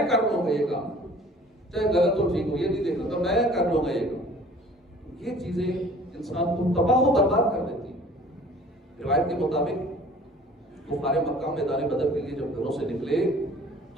کر لوں گا یہ کام، چاہے غلط ہو ٹھیک ہو، یہ نہیں دیکھنا تو میں کر لوں گا یہ کام، یہ چیزیں انسان کو تباہ و برباد کر دیتی. روایت کے مطابق کفار مکہ میدان بدر کے لیے جب گھروں سے نکلے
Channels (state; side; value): normal; both; correlation 0.49